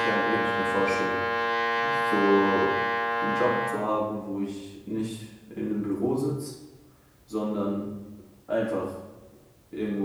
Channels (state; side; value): identical; both; correlation 1.00